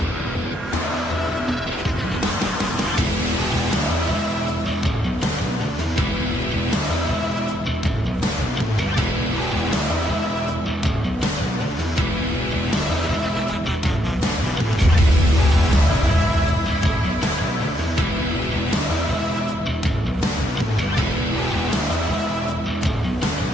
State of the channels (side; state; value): both; normal; correlation 0.74